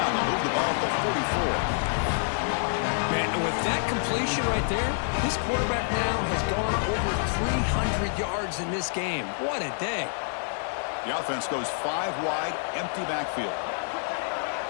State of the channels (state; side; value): silent; right; digital silence